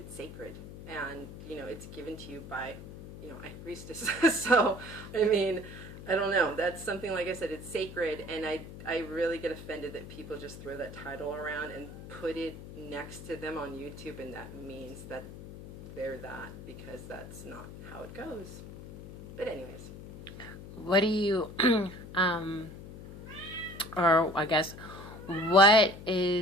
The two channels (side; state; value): left; noise; hum, 13 dB below the sound